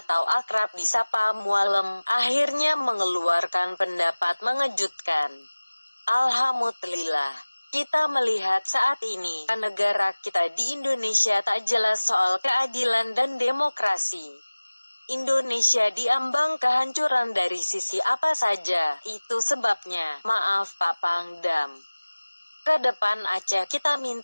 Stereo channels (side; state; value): both; inverted; correlation -1.00